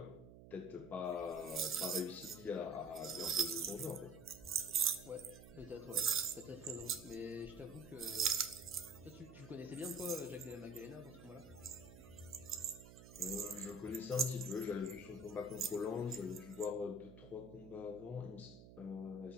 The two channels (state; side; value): noise; right; hum, 16 dB below the sound